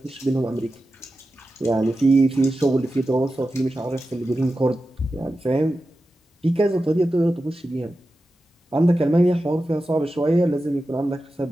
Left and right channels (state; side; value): normal; both; correlation 0.92